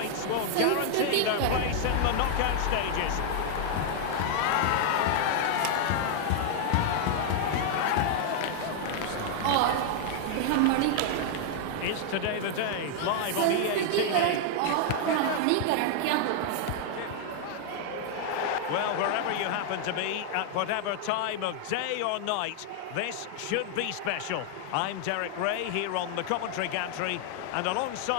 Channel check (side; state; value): both; different; correlation 0.00